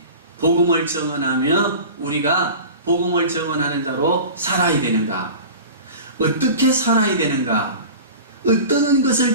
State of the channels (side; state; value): both; inverted; correlation -0.36